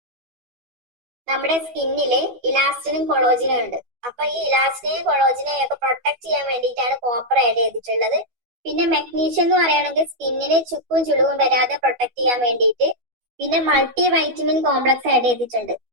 നമ്മുടെ സ്കിന്നില് ഇലാസ്റ്റിനും കൊളോജിനും ഉണ്ട്. അപ്പൊ ഈ ഇലാസ്റ്റിനെയും കൊളോജിനെയും ഒക്കെ പ്രൊട്ടക്ട് ചെയ്യാൻ വേണ്ടിയിട്ടാണ് കോപ്പർ ആഡ് ചെയ്തിട്ടുള്ളത്. പിന്നെ മെഗ്നീഷ്യം എന്ന് പറയുകയാണെങ്കിൽ സ്കിന്നിന് ചുക്കും ചുളിവും വരാതെ പ്രൊട്ടക്ട് ചെയ്യാൻ വേണ്ടിയിട്ട്. പിന്നെ മൾട്ടി വൈറ്റമിൻ കോംപ്ലക്സ് ആഡ് ചെയ്തിട്ടുണ്ട്.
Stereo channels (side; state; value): left; late; 12 ms